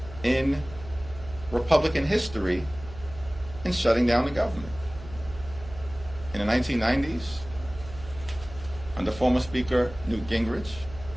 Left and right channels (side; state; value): right; noise; hum, 15 dB below the sound